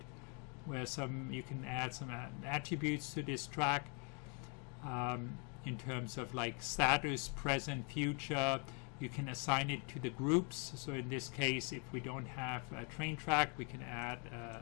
where you can add some attributes to this track in terms of like status, present, future. You can assign it to the groups. So in this case, if we don't have a train track, we can add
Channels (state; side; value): quieter; right; 35.9 dB